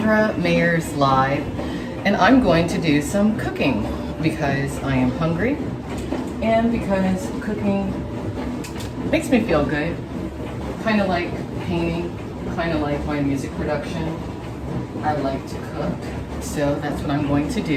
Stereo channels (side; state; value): both; identical; correlation 1.00